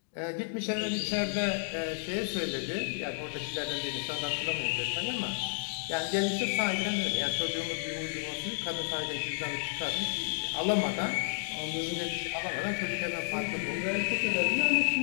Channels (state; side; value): silent; right; digital silence